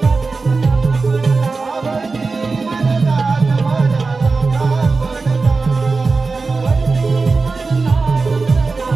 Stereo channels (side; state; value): left; quieter; 4.1 dB